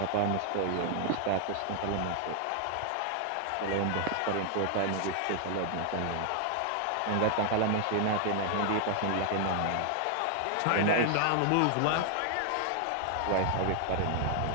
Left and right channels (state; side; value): different; both; correlation 0.00